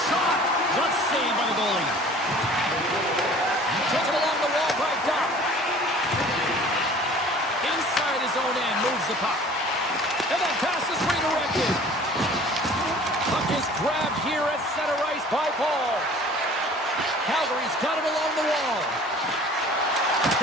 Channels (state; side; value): normal; both; correlation 0.48